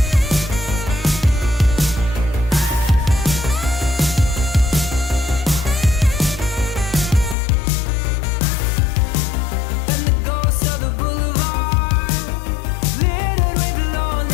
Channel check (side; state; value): right; drops out; at 7.4 s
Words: And the ghosts of the boulevard, littered with